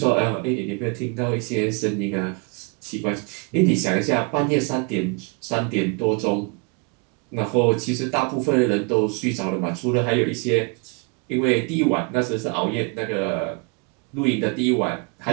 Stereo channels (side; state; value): left; quieter; 32.9 dB